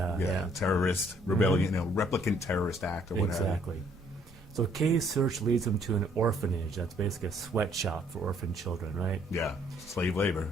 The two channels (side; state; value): both; normal; correlation 0.64